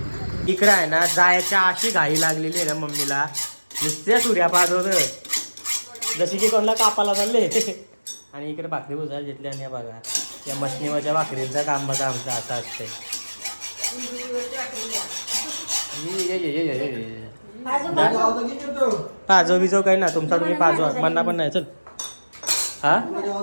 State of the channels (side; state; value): both; inverted; correlation -1.00